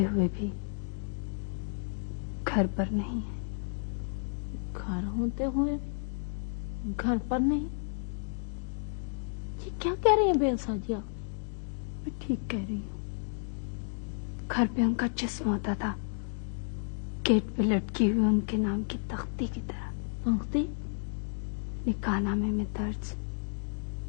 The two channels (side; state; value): right; silent; digital silence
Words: हुए भी घर पर नहीं है। घर होते हुए घर पर नहीं? ये क्या कह रही हैं बेलसा जी आप? मैं ठीक कह रही हूँ। घर पे उनका जिस्म होता था, गेट पे लटकी हुई उनके नाम की तख्ती की तरह। तख्ती? निकाहनामे में दर्ज